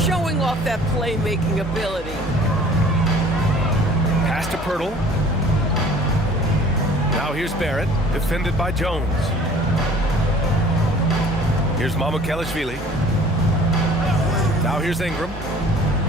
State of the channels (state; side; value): normal; both; correlation 0.50